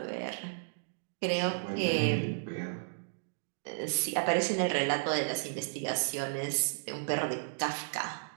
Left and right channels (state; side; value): silent; left; digital silence